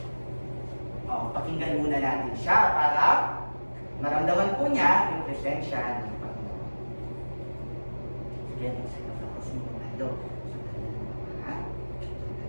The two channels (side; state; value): both; inverted; correlation -1.00